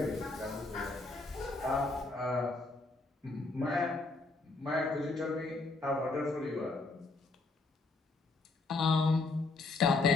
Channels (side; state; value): right; quieter; 3.5 dB